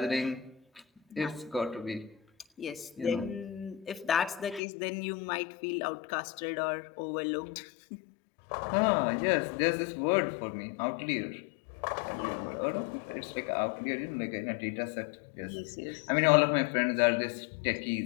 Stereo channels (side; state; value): right; drops out; at 4.6 s